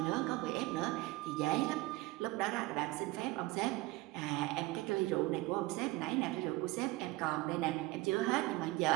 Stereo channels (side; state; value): left; quieter; 20.1 dB